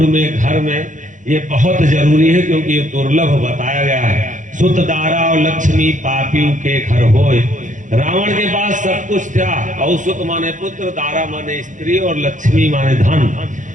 में घर में, ये बहुत जरूरी है क्योंकि ये दुर्लभ बताया गया है। सुत दारा और लक्ष्मी पापियों के घर होए। रावण के पास सब कुछ था, और सुत माने पुत्र, दारा माने स्त्री और लक्ष्मी माने धन।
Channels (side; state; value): left; late; 0.37 ms